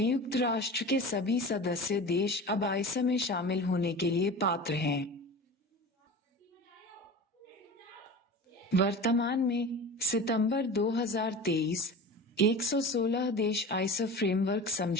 राष्ट्र के सभी सदस्य देश अब ISA में शामिल होने के लिए पात्र हैं। वर्तमान में सितंबर 2023 116 देश ISA फ्रेमवर्क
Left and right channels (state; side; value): normal; both; correlation 0.34